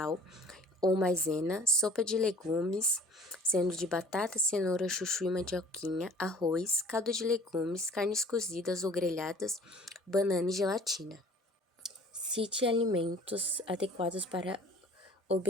ou maisena, sopa de legumes, sendo de batata, cenoura, chuchu e mandioquinha, arroz, caldo de legumes, carnes cozidas ou grelhadas, banana e gelatina. Cite alimentos adequados para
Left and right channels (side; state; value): both; normal; correlation 0.50